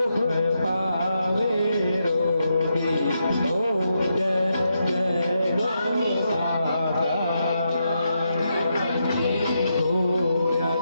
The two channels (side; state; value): both; inverted; correlation -0.83